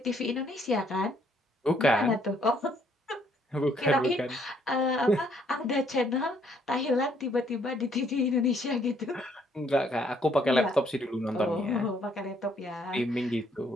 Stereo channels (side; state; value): both; normal; correlation 0.68